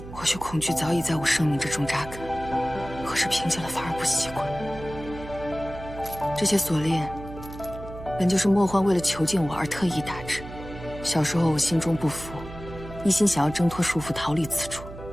或许恐惧早已在我生命之中扎根，可是平静了反而不习惯。这些锁链，本就是莫欢为了囚禁我而特意打制。小时候我心中不服，一心想要挣脱束缚逃离此处，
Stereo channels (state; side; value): noise; right; hum, 13 dB below the sound